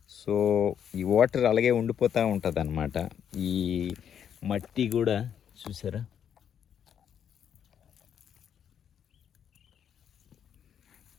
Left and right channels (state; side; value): quieter; right; 8.7 dB